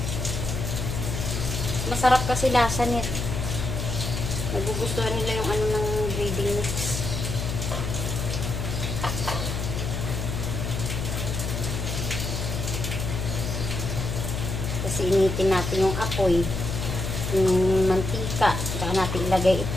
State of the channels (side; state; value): left; noise; hum, 3 dB below the sound